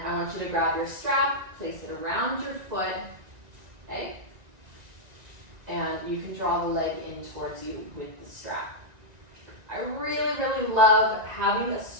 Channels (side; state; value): left; late; 1.9 ms